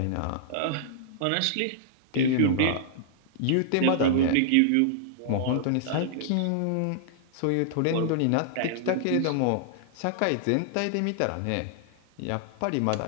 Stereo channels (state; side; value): different; both; correlation -0.01